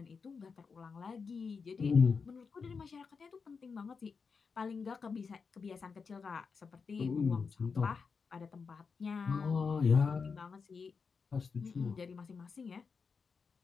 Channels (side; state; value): right; quieter; 5.3 dB